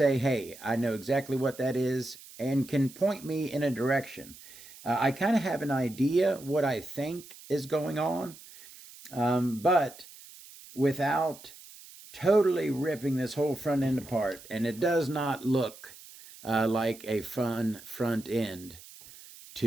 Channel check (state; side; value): noise; right; hiss, 19 dB below the sound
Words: hey, I know exactly what that is, and can point me in a direction. I kind of have an idea what I think is going on, but without totally ripping this whole front end apart. And it does not look like a fun front end